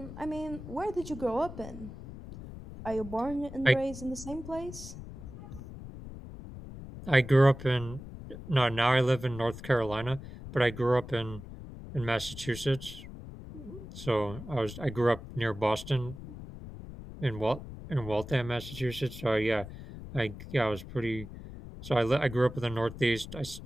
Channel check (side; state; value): left; noise; rumble, 12 dB below the sound